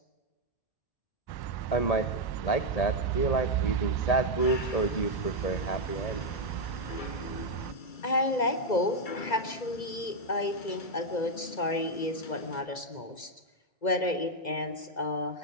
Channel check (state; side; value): late; right; 2.0 ms